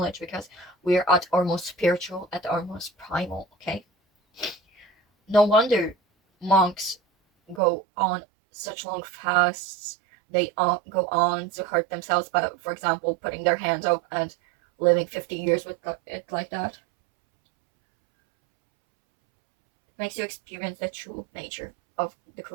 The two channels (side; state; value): left; drops out; at 7.6 s